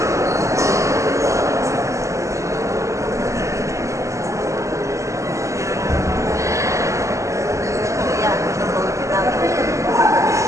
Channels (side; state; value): left; late; 0.15 ms